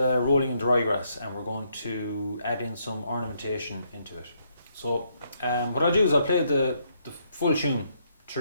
in the ryegrass, and we're going to add in some ornamentation into it. So what I'll do is I'll play the full tune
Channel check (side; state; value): both; inverted; correlation -0.74